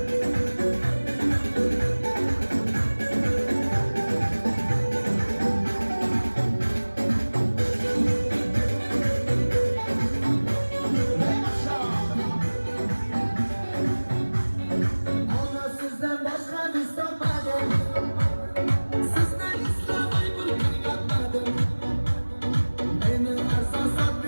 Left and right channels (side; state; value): both; inverted; correlation -1.00